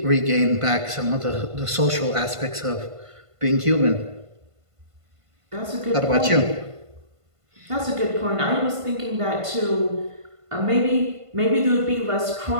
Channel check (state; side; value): late; left; 1.5 ms